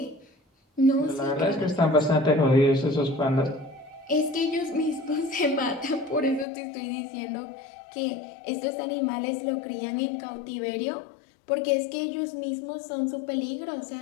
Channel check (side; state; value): right; drops out; at 6.5 s